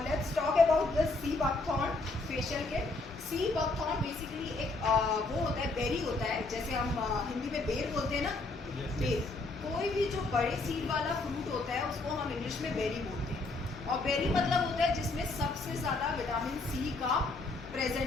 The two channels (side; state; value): right; quieter; 3.3 dB